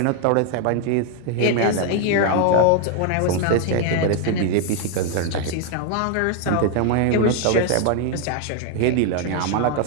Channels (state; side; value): different; both; correlation 0.00